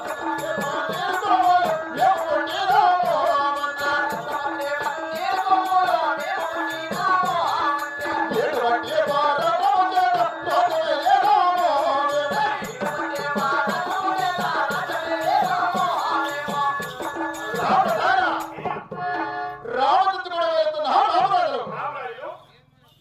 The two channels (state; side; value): identical; both; correlation 1.00